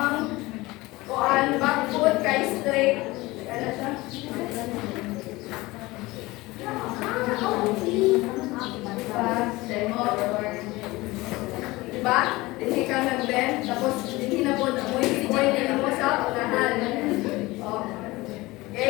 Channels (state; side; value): quieter; right; 20.8 dB